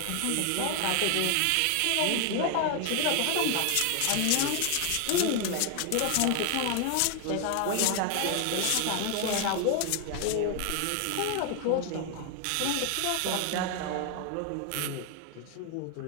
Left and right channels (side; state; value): both; different; correlation 0.00